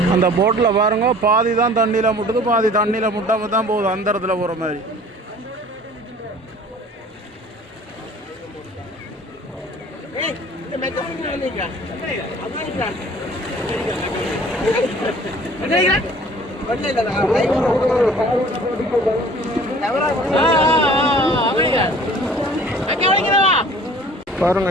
அந்த போட்டில் பாருங்க, பாதி தான் தண்ணியில் முட்டுது, பாதி தண்ணியில் முட்டாமல் தான் போகுது. அந்த இடத்துல போகிற மாதிரி. பாருங்க,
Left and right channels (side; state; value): both; normal; correlation 0.49